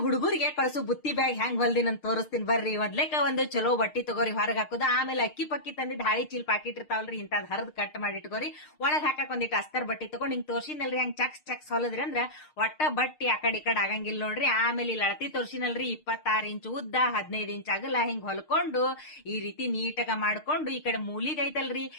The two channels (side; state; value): right; late; 6.6 ms